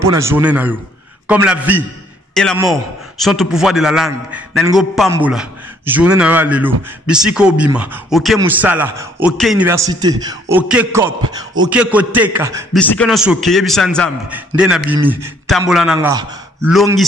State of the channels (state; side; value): normal; both; correlation 0.64